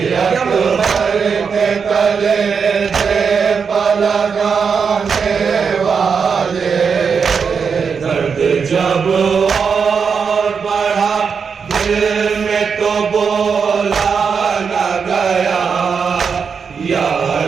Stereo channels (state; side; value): quieter; left; 6.0 dB